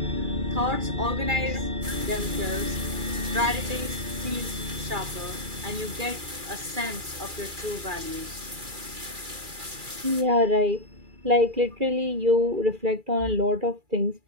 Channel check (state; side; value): late; left; 2.4 ms